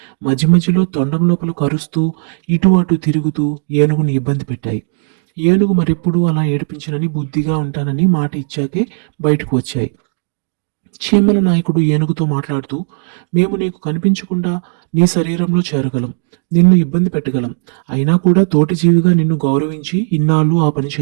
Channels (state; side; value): silent; left; digital silence